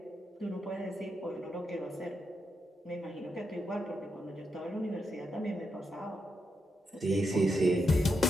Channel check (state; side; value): normal; both; correlation 0.84